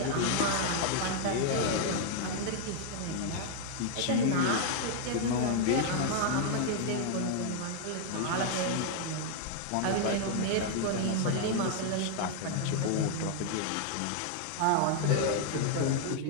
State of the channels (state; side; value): different; both; correlation 0.00